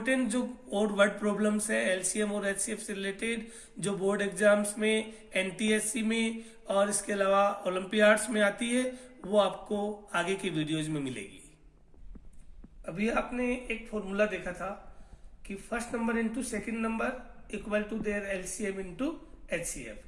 जो और वर्ड प्रॉब्लम्स है LCM और HCF से रिलेटेड जो बोर्ड एग्जाम्स में, NTSC में और इसके अलावा ओलंपियाड्स में आती है वो आपको आगे की वीडियोज में मिलेगी. अभी आपने एक फॉर्मूला देखा था कि first number into second number equal to their LCM into HCF.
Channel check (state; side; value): identical; both; correlation 1.00